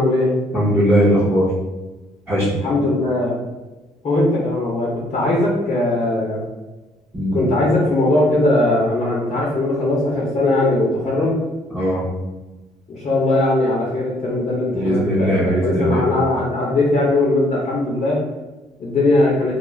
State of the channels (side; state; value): both; normal; correlation 0.65